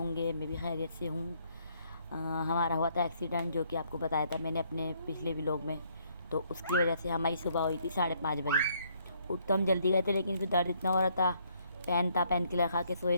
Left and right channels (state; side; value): inverted; both; correlation -0.68